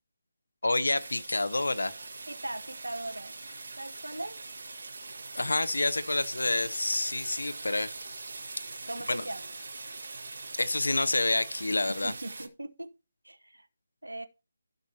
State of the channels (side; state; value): both; inverted; correlation -0.98